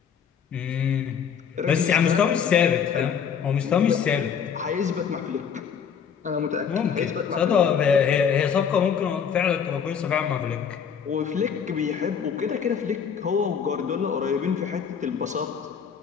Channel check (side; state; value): right; quieter; 7.3 dB